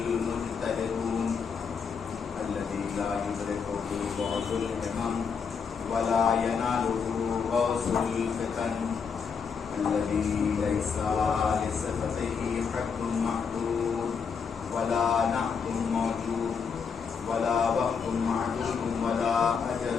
الذي لا يدركه بعض الهمم ولا يناله غوث الفتن. الذي ليس لصفته حد محدود ولا نعت موجود ولا وقت معدود ولا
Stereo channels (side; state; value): right; quieter; 6.0 dB